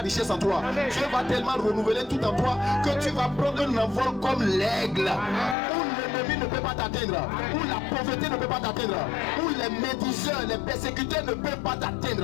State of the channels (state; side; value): drops out; right; at 5.6 s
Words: en toi. Dieu va tellement renouveler tout en toi que tu vas prendre un envol comme l'aigle. Où l'ennemi ne peut pas t'atteindre. Où la pauvreté ne peut pas t'atteindre. Où les médiseurs, les persécuteurs ne peuvent pas